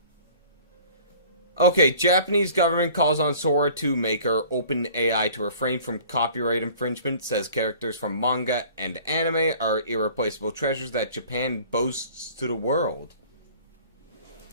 Okay, Japanese government calls on Sora 2 maker OpenAI to refrain from copyright infringement, says characters from manga and anime are irreplaceable treasures that Japan boasts to the world.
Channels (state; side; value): inverted; both; correlation -0.48